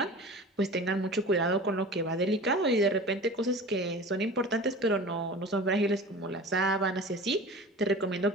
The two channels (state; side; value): normal; both; correlation 0.37